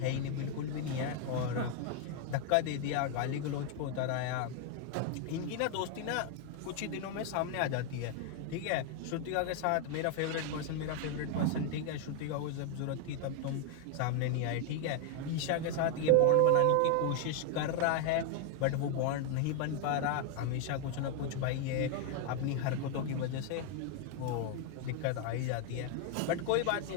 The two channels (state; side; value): different; both; correlation 0.00